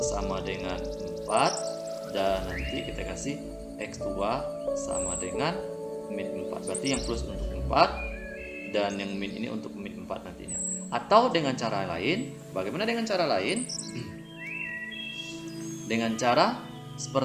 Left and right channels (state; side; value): identical; both; correlation 1.00